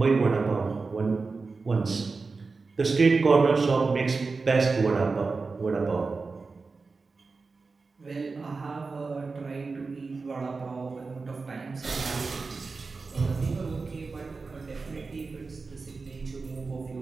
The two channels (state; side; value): quieter; left; 4.2 dB